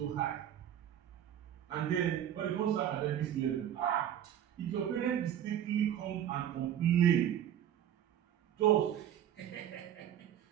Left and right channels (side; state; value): left; quieter; 10.5 dB